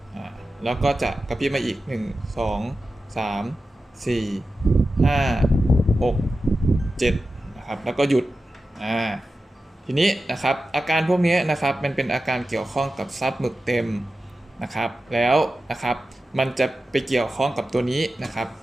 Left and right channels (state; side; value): normal; both; correlation 0.93